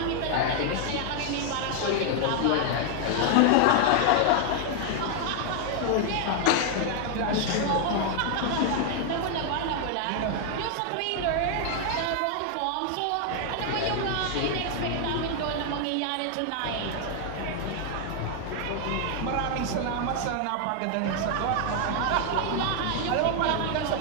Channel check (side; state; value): both; different; correlation 0.00